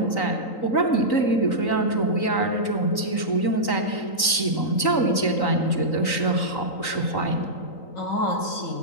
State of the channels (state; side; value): late; right; 3.9 ms